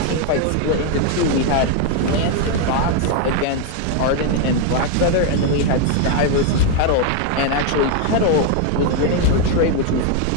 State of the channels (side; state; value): both; different; correlation 0.01